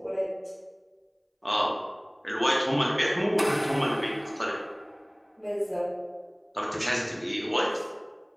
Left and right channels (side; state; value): both; identical; correlation 1.00